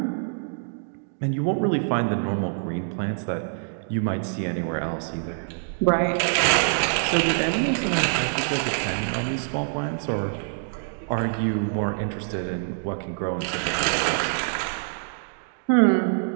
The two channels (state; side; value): silent; left; digital silence